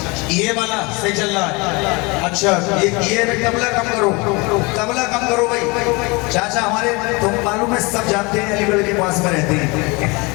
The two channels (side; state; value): right; quieter; 27.0 dB